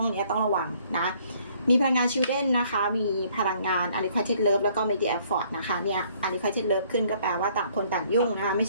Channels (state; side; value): inverted; both; correlation -0.62